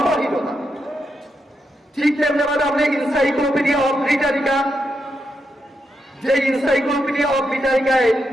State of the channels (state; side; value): normal; both; correlation 0.84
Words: ঠিক তেমনি আপনি ইনসাইক্লোপিডিয়া অফ ব্রিটানিকা, যে ইনসাইক্লোপিডিয়া অফ ব্রিটানিকায়